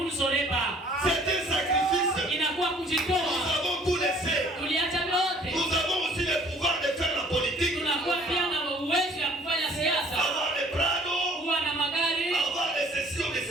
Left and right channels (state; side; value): normal; both; correlation 0.55